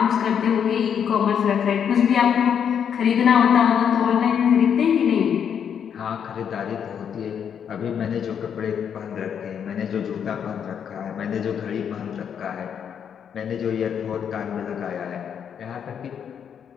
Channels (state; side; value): quieter; right; 8.0 dB